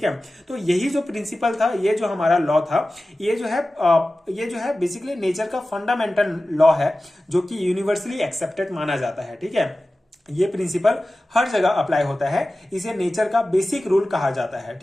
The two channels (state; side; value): normal; both; correlation 0.96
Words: है, तो यही जो प्रिंसिपल था, ये जो हमारा लॉ था, ये जो है बेसिकली नेचर का फंडामेंटल लॉ है, जो कि यूनिवर्सली एक्सेप्टेड माना जाता है। ठीक है, ये प्रिंसिपल हर जगह अप्लाई होता है, इसे नेचर का बेसिक रूल कहा जाता है।